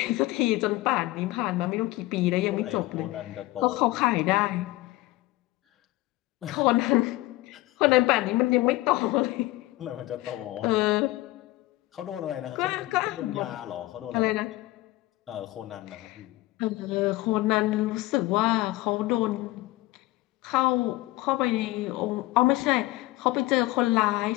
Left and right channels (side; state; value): right; quieter; 18.5 dB